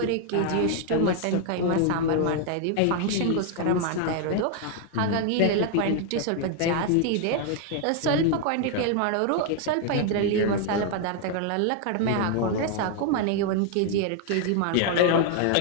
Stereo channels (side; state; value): both; different; correlation 0.00